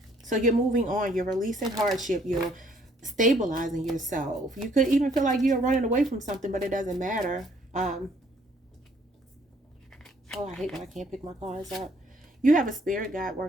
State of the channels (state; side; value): normal; both; correlation 0.63